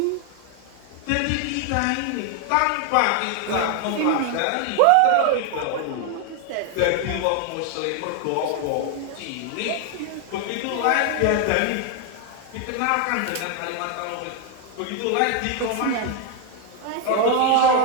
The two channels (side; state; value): both; different; correlation 0.01